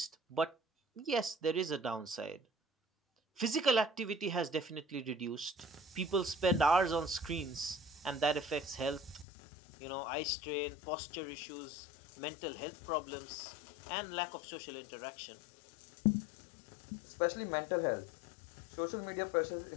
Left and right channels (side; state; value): right; drops out; at 9.2 s